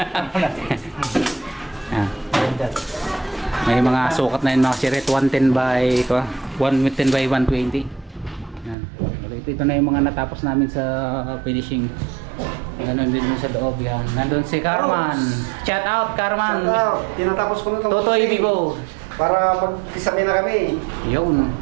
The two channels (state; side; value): drops out; left; at 8.8 s